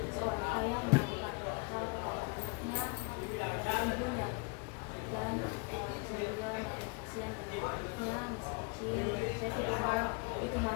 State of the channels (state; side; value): quieter; right; 30.6 dB